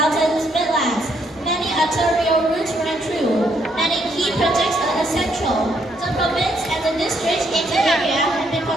midlands, many arterial routes run through, many key projects are essential. The province and the districts in the area have been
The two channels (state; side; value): normal; both; correlation 0.72